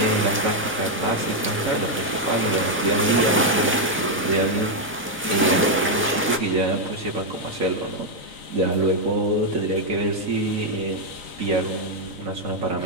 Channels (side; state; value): both; normal; correlation 0.00